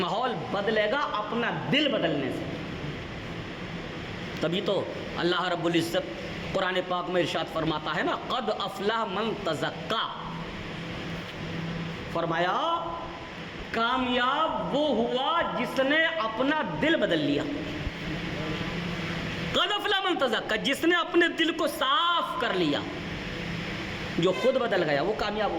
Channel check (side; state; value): both; identical; correlation 1.00